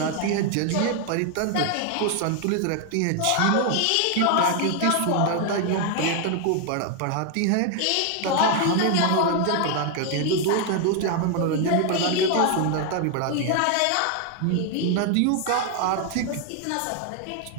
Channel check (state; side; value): different; both; correlation 0.00